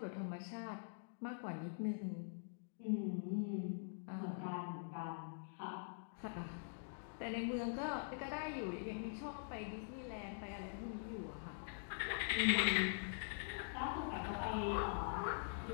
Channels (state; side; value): silent; right; digital silence